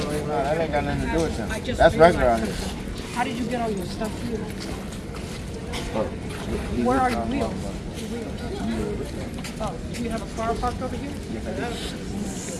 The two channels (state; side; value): identical; both; correlation 1.00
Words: right now. That ain't got nothing to do with them. That's regular out here. How did you get all your stuff here? Oh, Where are your wheels? Oh, do you have a car parked over here?